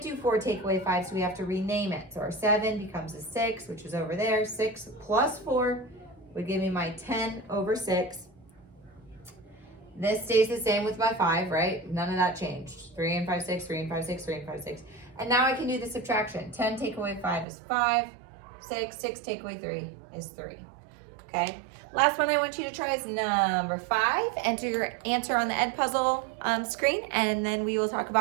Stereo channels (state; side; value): drops out; left; at 17.4 s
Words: do 4 take away 5, so we have to rename it. So our 7 becomes a 6, which is over there. 6 plus 4 would give me my 10/6. This stays the same with my 5, right? None of that changed. 3 and 5, 6, 3 and 5, 6, 3 and 5, 6. And now I can do the subtraction. 10 take away 5 is 5. 6 take away 3 is 3. Okay? Last one I want you to try is number 5. Enter your answer on the Edpuzzle screen, and then we will talk